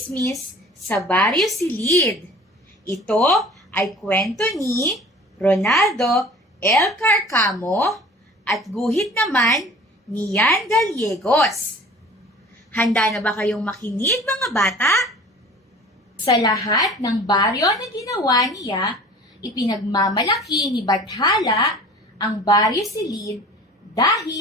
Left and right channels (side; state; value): both; normal; correlation 0.45